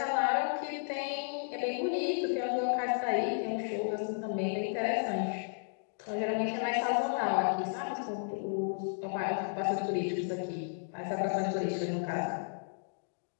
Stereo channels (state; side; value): silent; right; digital silence